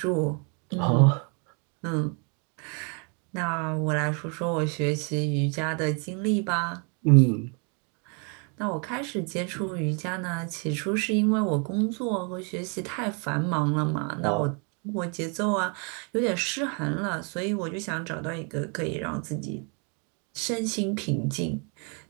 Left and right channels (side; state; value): left; quieter; 36.5 dB